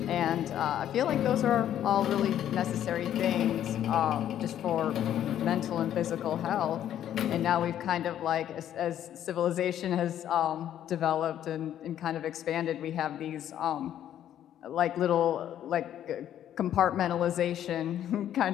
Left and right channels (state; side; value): quieter; right; 10.9 dB